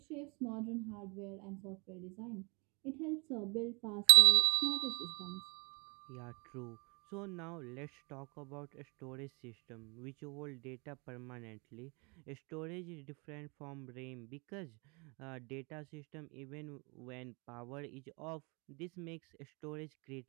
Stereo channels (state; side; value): quieter; left; 30.4 dB